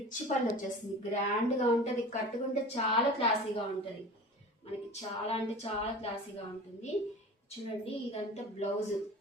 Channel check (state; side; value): normal; both; correlation 0.37